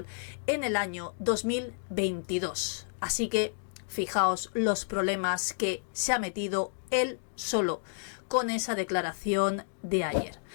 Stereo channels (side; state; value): right; silent; digital silence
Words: en el año 2022. Así que fijaos los problemas que se ha metido él solo con esa declaración de ayer.